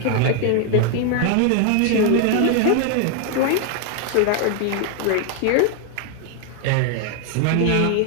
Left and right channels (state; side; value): different; both; correlation 0.01